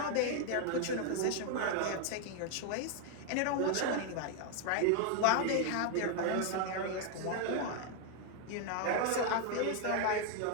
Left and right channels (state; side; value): different; both; correlation 0.01